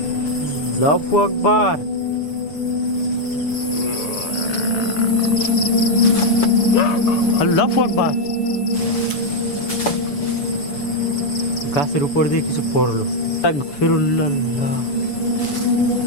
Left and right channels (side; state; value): right; late; 6.9 ms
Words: আল্লাহু আকবার। আল্লাহু আকবার। গাছের উপর দিয়ে কিছু পড়লো। আস্তাগফিরুল্লাহ।